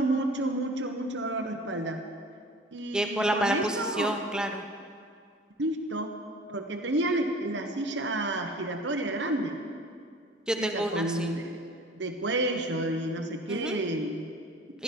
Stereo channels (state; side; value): normal; both; correlation 0.44